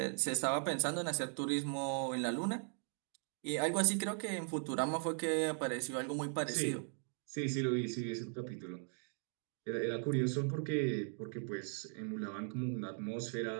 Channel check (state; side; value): silent; left; 52 dB below the other